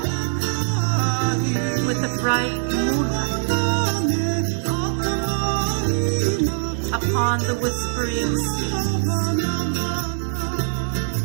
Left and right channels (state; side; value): silent; left; 64 dB below the other